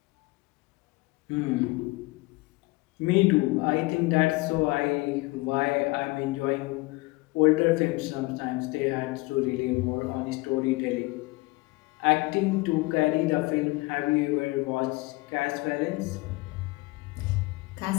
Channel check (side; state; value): right; quieter; 23.3 dB